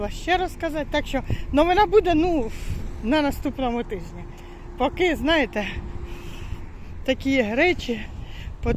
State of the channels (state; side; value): identical; both; correlation 1.00